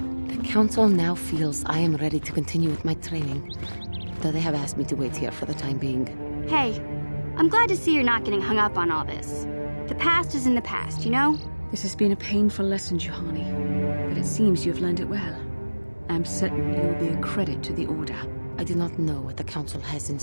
The Council now feels I am ready to continue with my training, though they have asked me to wait here for the time being. Hey, I'm glad to see you're not getting hung up on all this. The past is in the past, you know? This has been a painful lesson, Juhani, but it seems you've learned it well. I'm certain you will be a credit to the Order. I do not know what the Council has in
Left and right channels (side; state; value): both; inverted; correlation -1.00